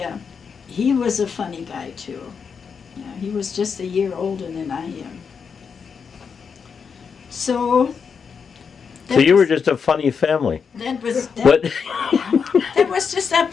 he was a funny guy too. Yeah, he was just a year older than I am. So you were just a funny family. That was What? that was just a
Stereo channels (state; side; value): quieter; right; 6.2 dB